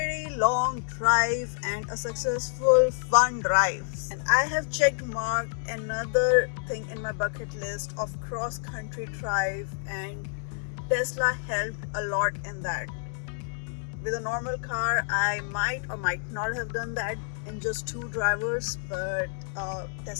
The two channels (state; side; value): silent; right; digital silence